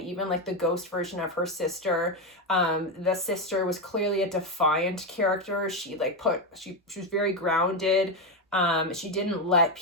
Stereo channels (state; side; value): normal; both; correlation 0.10